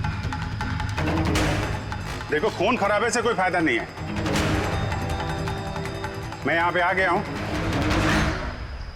देखो, खून खराबे से कोई फायदा नहीं है। मैं यहां पे आ गया हूं।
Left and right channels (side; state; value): both; identical; correlation 1.00